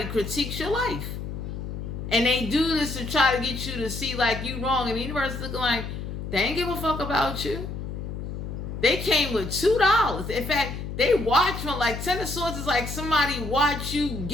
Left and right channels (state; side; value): noise; left; hum, 6 dB below the sound